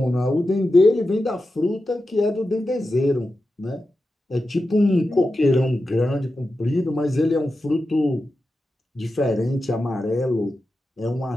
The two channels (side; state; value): both; normal; correlation 0.91